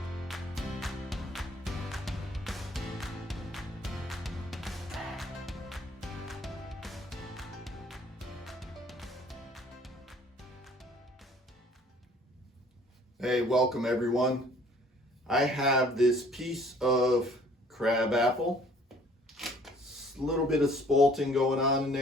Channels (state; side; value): normal; both; correlation 0.56